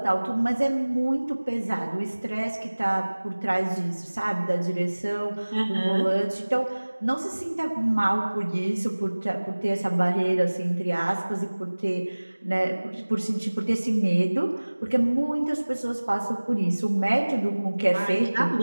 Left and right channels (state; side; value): inverted; both; correlation -1.00